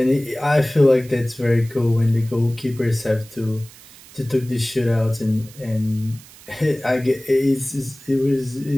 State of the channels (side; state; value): right; noise; hiss, 21 dB below the sound